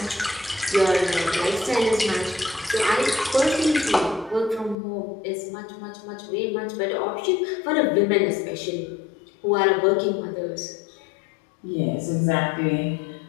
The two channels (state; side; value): drops out; right; at 4.8 s